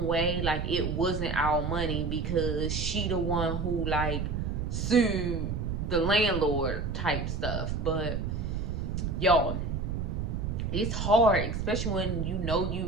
way like it wasn't our money because she the one who like sued the landlord type stuff. But y'all, it's hard, especially when you know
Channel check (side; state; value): right; noise; rumble, 2 dB below the sound